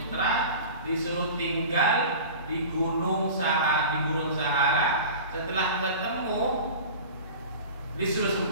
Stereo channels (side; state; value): both; inverted; correlation -0.36